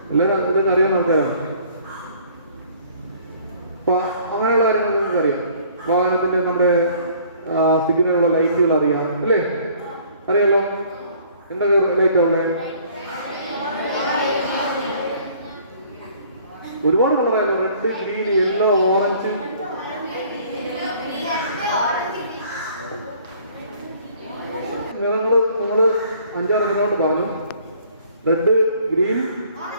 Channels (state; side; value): inverted; both; correlation -0.56